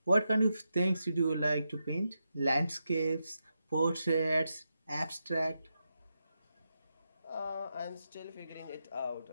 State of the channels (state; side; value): inverted; both; correlation -0.87